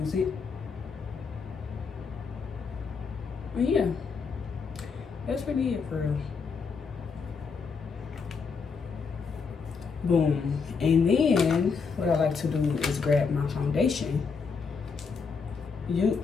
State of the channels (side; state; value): right; quieter; 5.3 dB